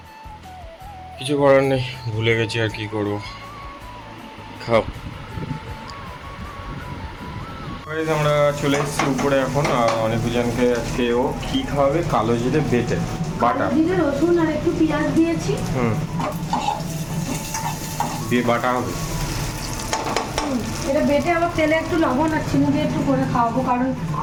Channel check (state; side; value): identical; both; correlation 1.00